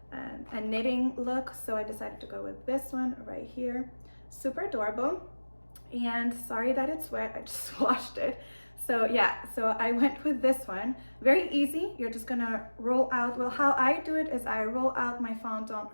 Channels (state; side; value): inverted; both; correlation -1.00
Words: knitting look, so I decided to go with this one right here. Super adorable. And sorry that it's wet, I just washed it. So yeah, so I went with this one. Very easy. You're just gonna roll out, well, how I do it is I roll out my